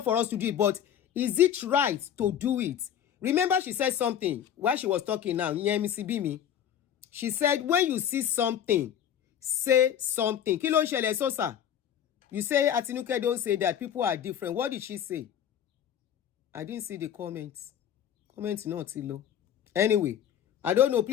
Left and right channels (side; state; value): right; quieter; 9.7 dB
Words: for us to do it, but is it right to do it? Remember she said something while she was talking now. She said, when you see something, say something. Kí ló ń ṣẹlẹ̀ Sosa? You say Atinuke don't say that people are different. What did she say? I didn't see the comments. Comments not too low. Anyway, I don't know.